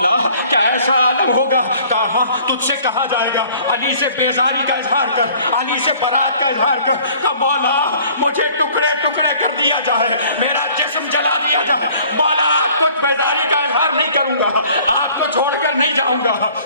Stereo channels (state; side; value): inverted; both; correlation -0.53